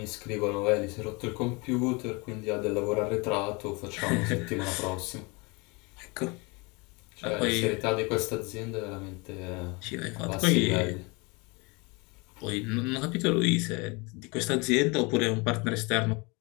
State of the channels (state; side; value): quieter; right; 28.0 dB